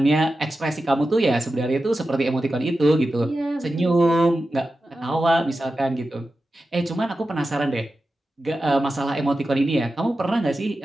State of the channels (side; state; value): both; normal; correlation 0.92